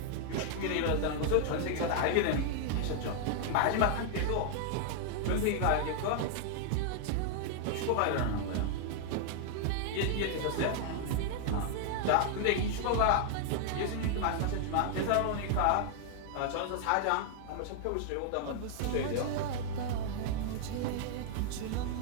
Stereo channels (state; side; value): different; both; correlation 0.00